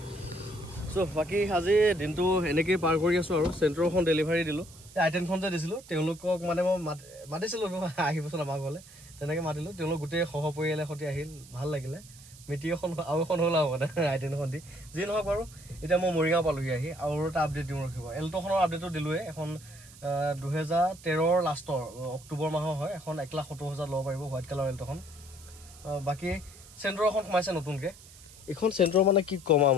বাকী আজি দিনটো এনেকেই পাৰ কৰি আছো আৰু চেন্ট্ৰখন ডেলিভাৰী দিলোঁ আইটেনখন যে দিছিলোঁ তেওঁলোকক মানে মই মাতিছিলোঁ আহিবচোন আমাৰ ঘৰলৈ তেনেকৈ মাতিলোঁ তেওঁলোক গোটেই সহ পৰিয়ালৰ সৈতে আহিল ভাল লাগিলে মিটিং এখন আৰু এখন হ'ল আৰু মানে আইটেনখন দি যি নহওক বাৰু এতিয়া মই মৰিগাঁও পালোহি আহি আৰু এটা আপডেট দিওঁ ৰখিব এল্টোখনৰ আপডেটো দিলোঁৱে এখন 2013 লাষ্টৰ অক্টোবৰ মাহৰ হয় এখন 1,70,000 ল'ব পাৰিব হোৱাইট কালাৰ এল্টোখন বাকী চেন্ট্ৰ এখন সোমাইছে নতুনকৈ এইখন চেন্ট্ৰ মানে কি ক'ম আৰু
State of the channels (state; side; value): noise; right; hiss, 20 dB below the sound